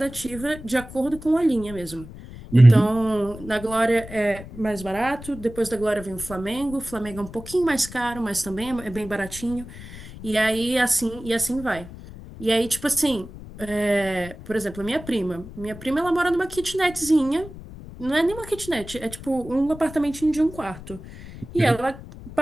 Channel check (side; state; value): left; noise; rumble, 15 dB below the sound